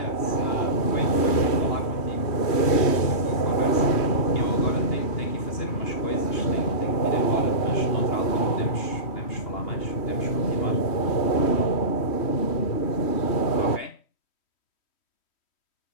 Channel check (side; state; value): right; late; 3.1 ms